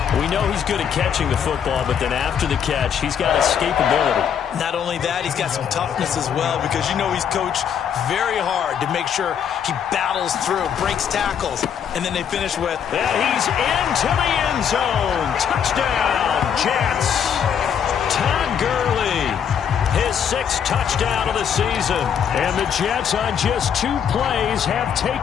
We know he's good at catching the football, but then after the catch, he's got escapability. Not only that, he's got some toughness as well, because you know he's coached very hard to make sure he battles through, breaks tackles, and then they finish with... And he's into the end zone. Touchdown, Jets. Todd Gurley, his 6th touchdown of the season. And the Jets on just 2 plays have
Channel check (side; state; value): right; quieter; 8.1 dB